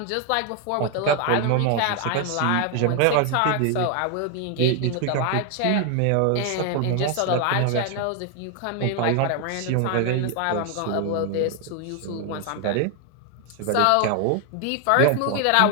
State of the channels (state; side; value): different; both; correlation 0.01